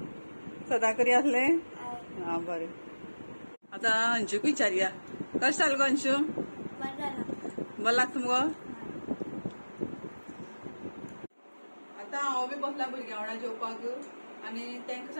सदा करी आसलें? हा बरें. आता अंशूक विचारया कशें जालें गो अंशू? बरें लागता मुगो? आता हांव बी बसला भुरग्यां वांगडा जेवपाक आणि तांकां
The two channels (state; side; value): inverted; both; correlation -1.00